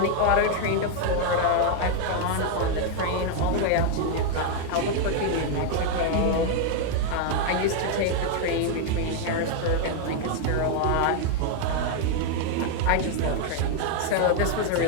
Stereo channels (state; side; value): different; both; correlation 0.00